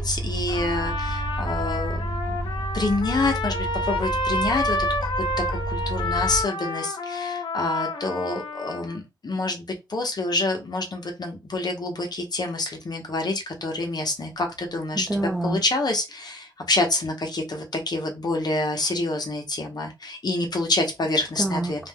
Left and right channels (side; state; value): both; normal; correlation 0.49